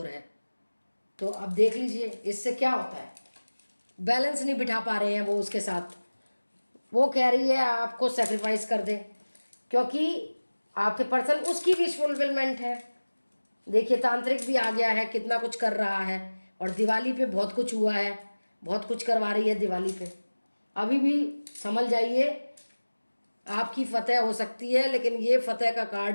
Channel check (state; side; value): inverted; both; correlation -1.00